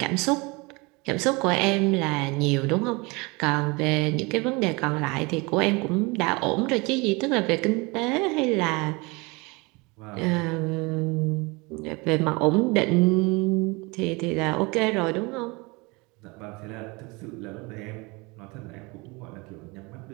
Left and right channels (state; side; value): quieter; left; 26.3 dB